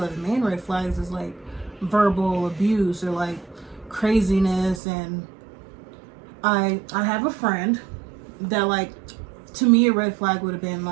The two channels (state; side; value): drops out; left; at 4.8 s